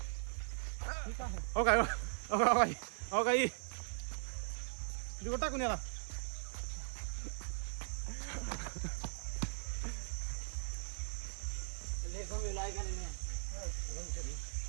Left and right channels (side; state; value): left; silent; digital silence